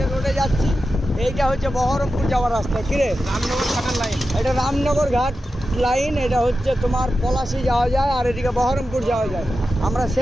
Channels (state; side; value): normal; both; correlation 0.91